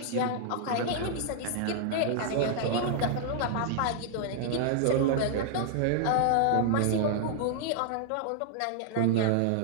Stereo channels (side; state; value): both; different; correlation -0.01